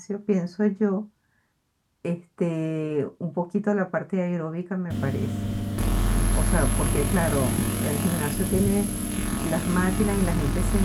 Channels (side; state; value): both; identical; correlation 1.00